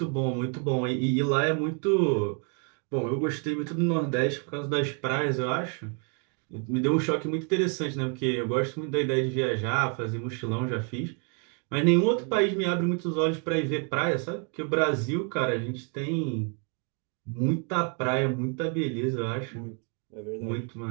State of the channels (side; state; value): left; quieter; 39.4 dB